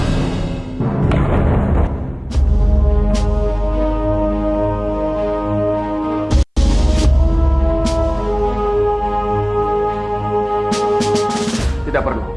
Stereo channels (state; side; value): identical; both; correlation 1.00